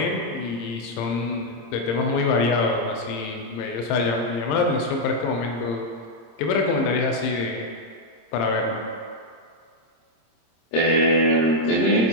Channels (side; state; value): right; late; 26 ms